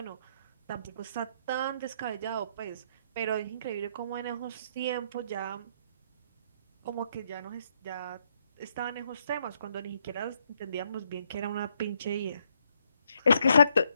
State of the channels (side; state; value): both; inverted; correlation -0.73